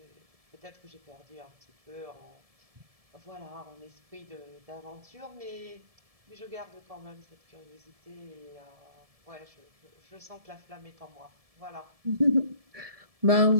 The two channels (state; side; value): late; left; 1.7 ms